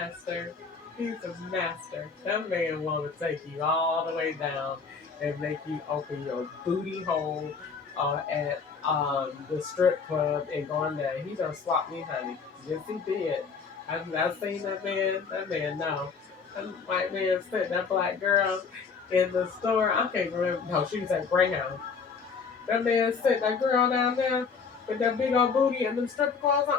He's a master. That man want to take you all the way down and make you open your booty hole at the strip club and go in there. He done swapped me, honey. Yes, he did. I've seen that man. That man, no. That white man sent that black girl in the store. I can't remember. No, she was at Greyhound. That man sent that girl down there with that big old booty and them strip clothes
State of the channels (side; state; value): right; quieter; 5.5 dB